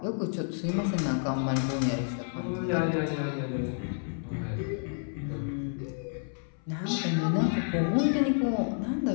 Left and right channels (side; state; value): right; silent; 58 dB below the other